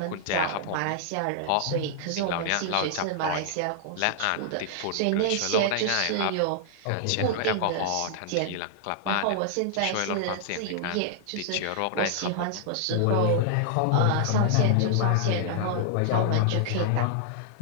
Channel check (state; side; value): different; both; correlation -0.01